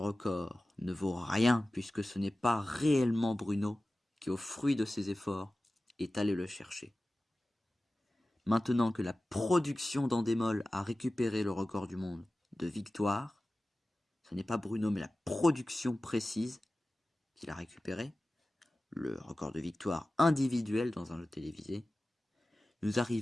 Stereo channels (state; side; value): normal; both; correlation 0.96